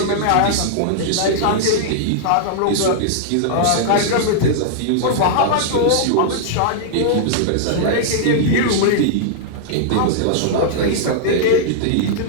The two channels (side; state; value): both; different; correlation -0.02